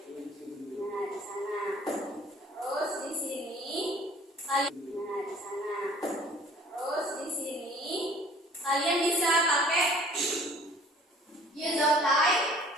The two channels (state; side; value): normal; both; correlation 0.52